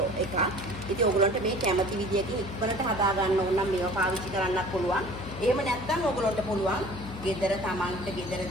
එක. ඉතින් ඕගලන්ට මේ කැමති විදියකින් ඉක්මනට හදා ගන්න ඕන නම් මේවා පාවිච්චි කරන්නත් පුළුවන්. එහෙම නැත්තම් ඕගලන්ට පුළුවන් ගෙදර තමන්ට ගෙදර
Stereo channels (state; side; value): noise; left; hum, 11 dB below the sound